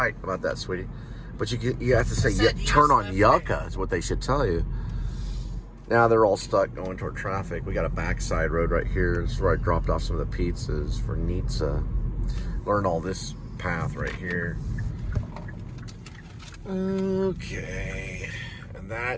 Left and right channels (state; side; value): identical; both; correlation 1.00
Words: about that, sweetie. But you have to say, turn on Yucca is what they should tell you. Now they're all stuck going toward traffic. We got a backside road right here. This is where I dropped off some of the pizzas for Nitsa. Learned all this path right here. Okay. And